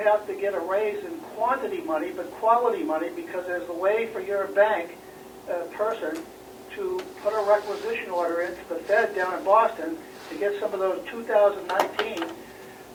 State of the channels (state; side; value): identical; both; correlation 1.00